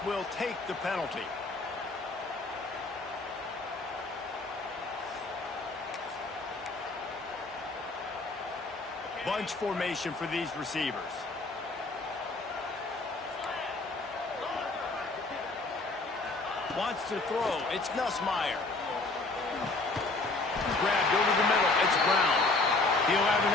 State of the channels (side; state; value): right; quieter; 3.3 dB